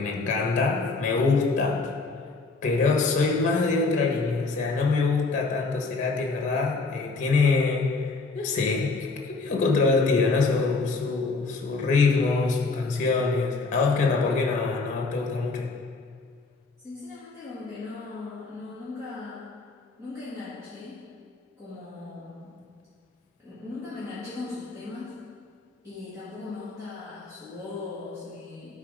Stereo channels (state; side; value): quieter; right; 3.8 dB